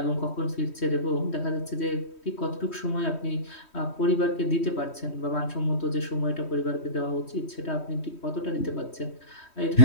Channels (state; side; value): late; right; 3.1 ms